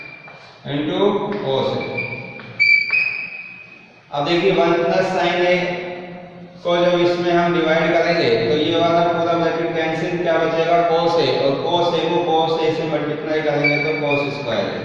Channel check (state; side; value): identical; both; correlation 1.00